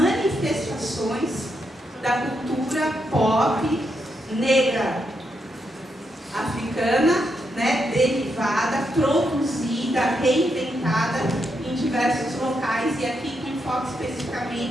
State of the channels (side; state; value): both; normal; correlation 0.81